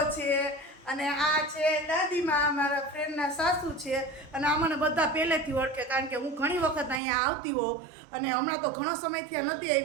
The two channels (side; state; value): left; drops out; at 7.0 s